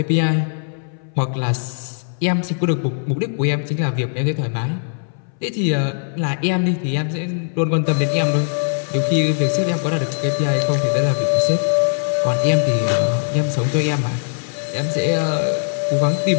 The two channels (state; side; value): silent; right; 62 dB below the other